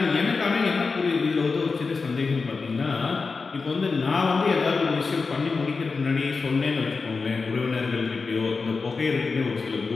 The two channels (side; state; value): right; quieter; 4.5 dB